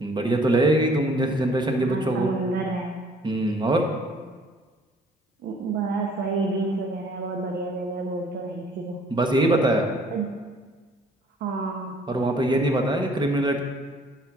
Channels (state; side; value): normal; both; correlation 0.58